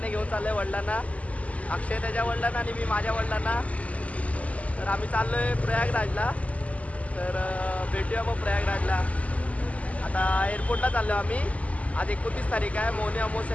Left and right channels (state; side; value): late; right; 0.069 ms